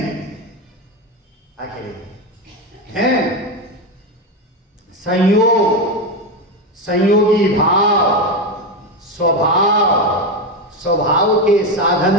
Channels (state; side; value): normal; both; correlation 0.13